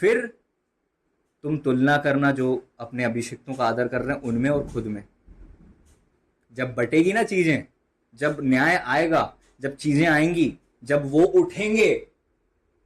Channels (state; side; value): identical; both; correlation 1.00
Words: तुम तुलना करना जो अपने अभिषिक्तों का आदर कर रहे हैं उनमें और खुद में। जब बटेगी ना चीजें, जब न्याय आएगा, जब चीजें आएंगी, जब वो उठेंगे,